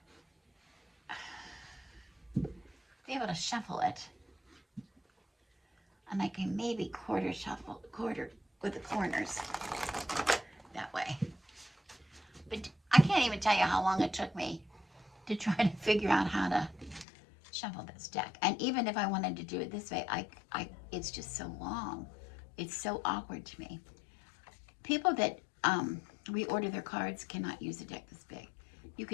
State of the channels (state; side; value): drops out; right; at 17.1 s